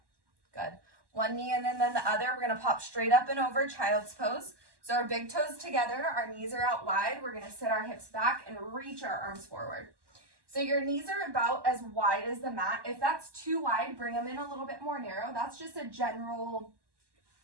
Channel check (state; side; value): late; left; 1.2 ms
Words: Good. One knee and then the other. We're gonna pop straight up and over, child's pose. So our big toes together, our knees are out wide. We're gonna sit our hips back and reach our arms forward. So your knees are about as wide as the mat. If that's too wide, bring them in a little bit more narrow. That's just a general